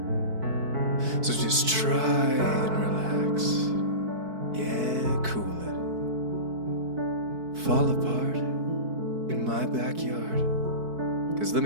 So just try and relax. Yeah, cool it. Fall apart in my backyard. 'Cause let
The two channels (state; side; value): late; left; 4.6 ms